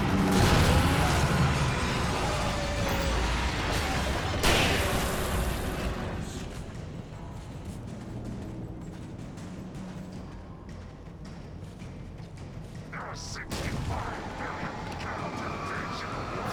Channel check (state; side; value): identical; both; correlation 1.00